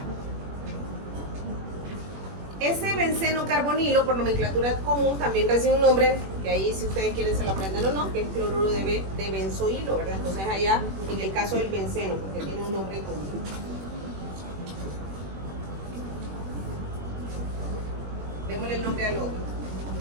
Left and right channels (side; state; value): left; late; 21 ms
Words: Ese benceno carbonilo, por nomenclatura común, también recibe un nombre, que ahí si ustedes quieren se lo aprenden o no, que es cloruro de benzoilo, ¿verdad? Entonces allá, en el caso del benceno, porque tiene un nombre común. Démosle el nombre al otro.